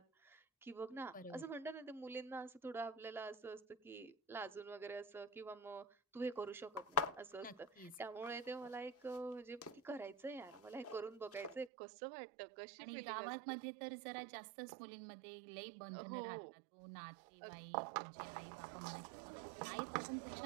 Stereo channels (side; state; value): left; drops out; at 11.7 s